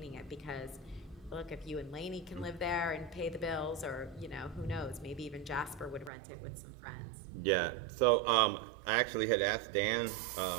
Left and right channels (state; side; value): drops out; left; at 6.1 s